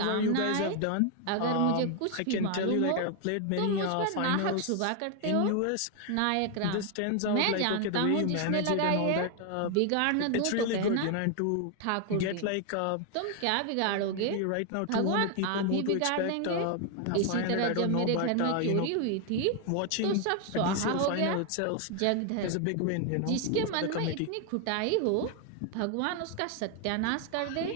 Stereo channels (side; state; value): both; different; correlation 0.01